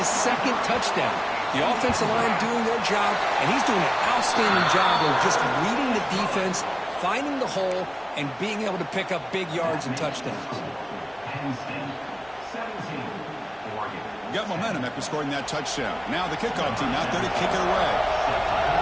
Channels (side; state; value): both; identical; correlation 1.00